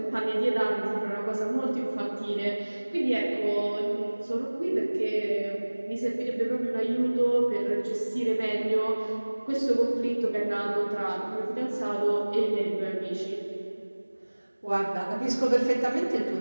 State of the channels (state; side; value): inverted; both; correlation -1.00